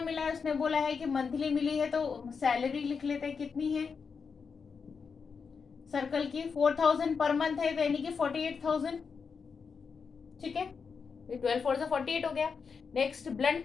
है, उसने बोला है कि मंथली मिली है, तो सैलरी लिख लेते हैं, कितनी है सर्कल की 4,000 पर मंथ है, यानी कि 48,000। ठीक है, 12 4 से 48 हो गया। नेक्स्ट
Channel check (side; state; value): right; quieter; 5.6 dB